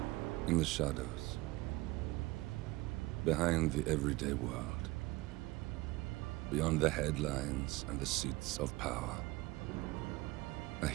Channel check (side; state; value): left; quieter; 20.7 dB